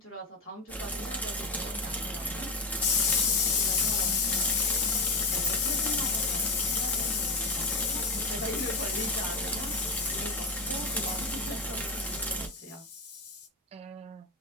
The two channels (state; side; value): quieter; right; 3.3 dB